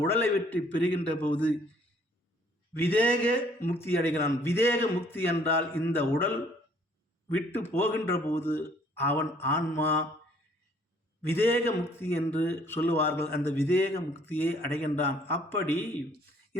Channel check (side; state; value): both; normal; correlation 0.61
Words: உடலை விட்டு பிரிகின்ற போது விதேக முக்தி அடைகிறான். விதேக முக்தி என்றால் இந்த உடல் விட்டு போகின்ற போது அவன் ஆன்மா விதேக முக்தி என்று சொல்லுவார்கள். அந்த விதேக முக்தியை அடைகின்றான். அப்படி